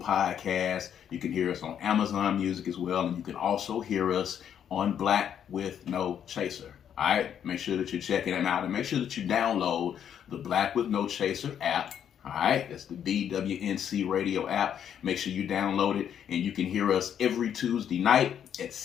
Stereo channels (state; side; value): quieter; right; 9.0 dB